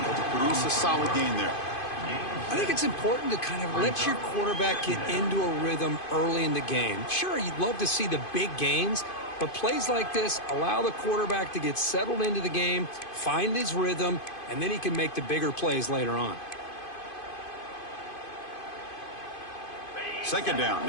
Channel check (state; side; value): late; right; 2.5 ms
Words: to produce a solid gain there. I think it's important to kind of let your quarterback get into a rhythm early in the game. Sure, you'd love to see the big gains, but plays like this allow the quarterback to get settled into the game, find his rhythm, and then he can make the bigger plays later on. Second down